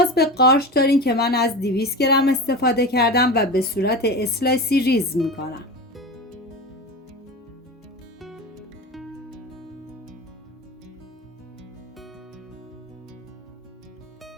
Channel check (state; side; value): normal; both; correlation 0.29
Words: به قارچ دارین که من از 200 گرم استفاده کردم و به صورت اسلایسی ریز میکنم.